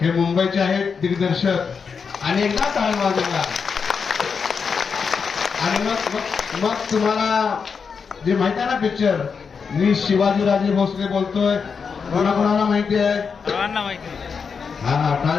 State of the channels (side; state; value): right; quieter; 5.8 dB